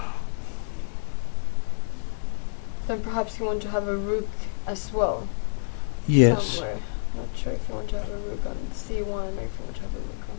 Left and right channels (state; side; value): silent; right; digital silence